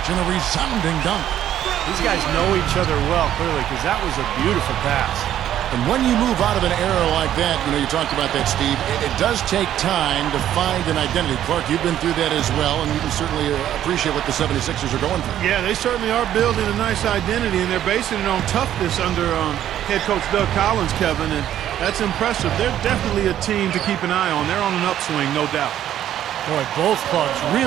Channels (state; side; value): quieter; left; 11.4 dB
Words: and a resounding dunk. These guys know each other well, clearly, because that was a beautiful pass. And when you move out of an error like that, you talked about that, Steve, it does take time to find an identity. Clark, you've been through that as well, and you can certainly appreciate what the 76ers are going through. Yeah, they certainly are building a nice identity, and they're basing it on toughness under head coach Doug Collins, Kevin, and that's impressive. They're definitely a team to keep an eye on. They're on an upswing, no doubt. Boy, both clubs